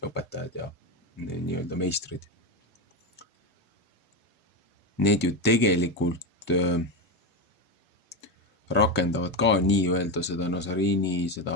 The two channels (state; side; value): normal; both; correlation 0.13